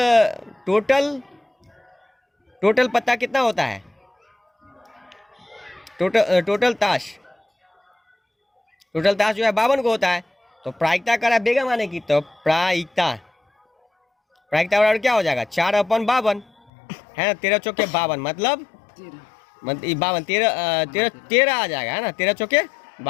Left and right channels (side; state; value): right; drops out; at 16.7 s